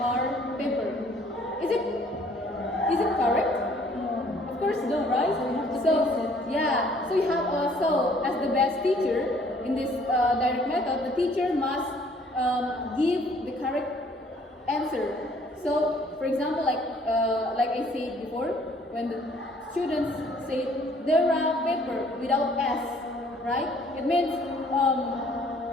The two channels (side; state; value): both; normal; correlation 0.59